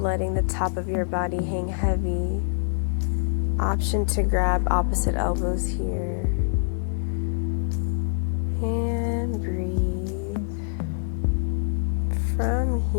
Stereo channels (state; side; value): silent; right; 62 dB below the other